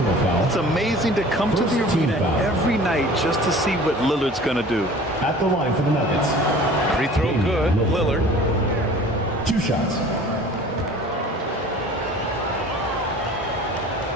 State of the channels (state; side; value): normal; both; correlation 0.45